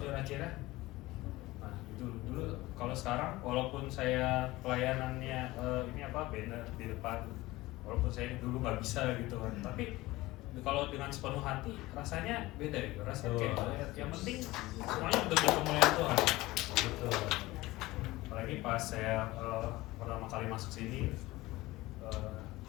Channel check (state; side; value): quieter; right; 18.9 dB